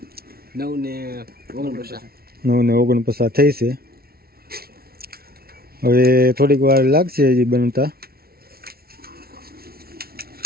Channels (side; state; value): left; late; 0.44 ms